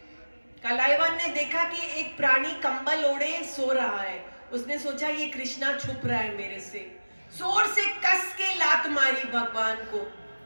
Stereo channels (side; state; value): both; inverted; correlation -1.00